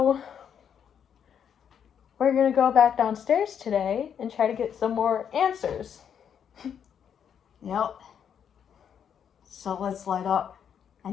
we're going to go back downstairs today and try to get some more answers. Yep. So let's light up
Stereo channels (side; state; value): right; quieter; 8.2 dB